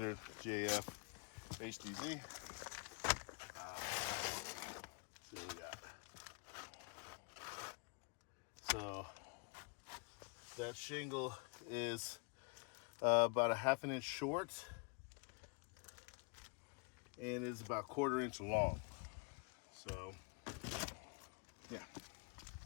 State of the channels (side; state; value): right; quieter; 33.2 dB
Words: JF HDZ. See what we got. So that shingle is about a ½ inch short and is about 1/4 inch long. So yeah,